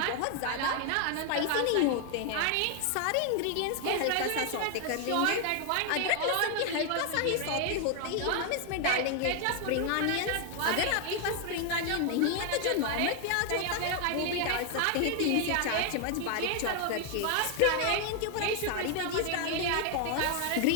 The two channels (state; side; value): different; both; correlation 0.00